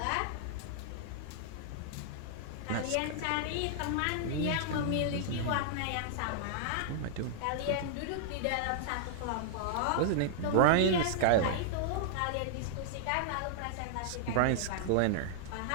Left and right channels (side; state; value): both; different; correlation -0.01